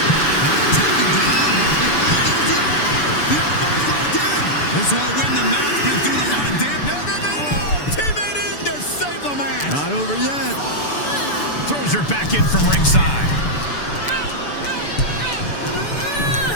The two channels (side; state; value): right; late; 6.9 ms